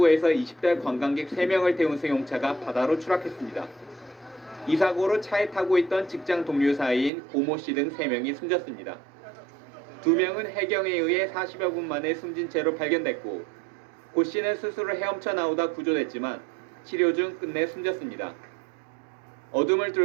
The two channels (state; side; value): drops out; left; at 7.1 s